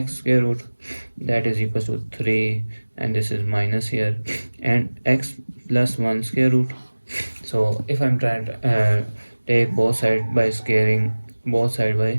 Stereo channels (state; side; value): inverted; both; correlation -1.00